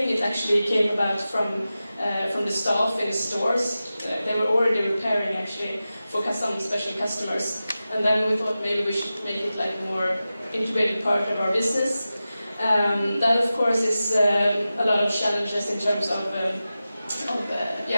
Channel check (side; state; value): both; inverted; correlation -0.94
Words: It actually came about from the staff in the stores. They were already repairing actually for some special customers. And then we thought maybe we should make it like more integrated part of our business. That of course is a lot of challenges in terms of